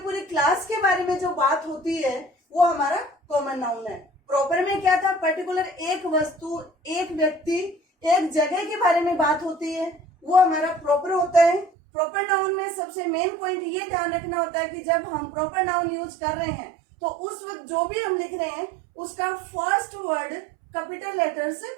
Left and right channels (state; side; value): drops out; left; at 11.7 s